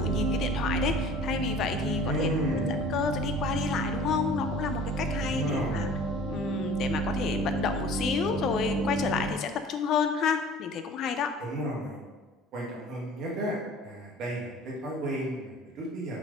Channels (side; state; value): both; normal; correlation 0.46